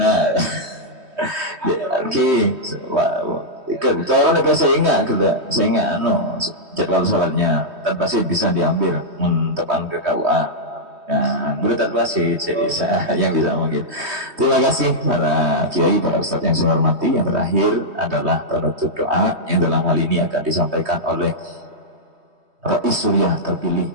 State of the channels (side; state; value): left; late; 3.2 ms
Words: Oke, orang negara saya ingat jadwal sholatnya tanpa sih bisa diambil tepan ke KUA. Nah, menurut tanpa sih saya yang bisa mungkin. Terima kasih para kiai, para ustadz yang saya hormati. Yang terakhir adalah penutup doa yang dalam hal ini akan disampaikan oleh Rais Suriah terpilih.